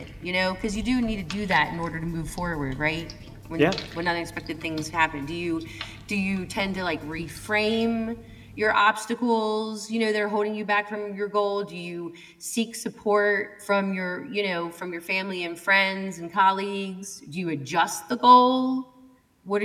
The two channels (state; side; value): identical; both; correlation 1.00